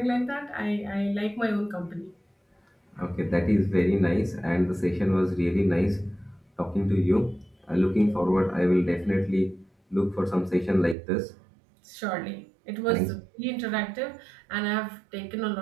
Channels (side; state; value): left; drops out; at 11.0 s